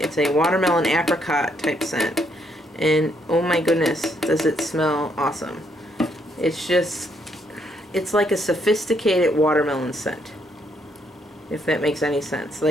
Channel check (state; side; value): normal; both; correlation 0.72